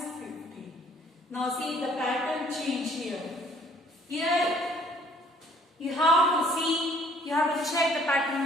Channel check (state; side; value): normal; both; correlation 0.59